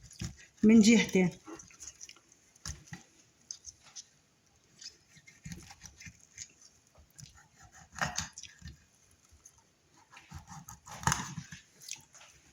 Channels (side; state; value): both; identical; correlation 1.00